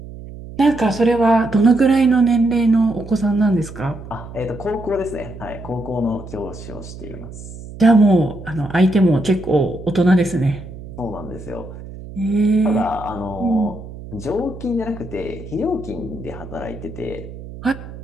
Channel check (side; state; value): right; noise; hum, 13 dB below the sound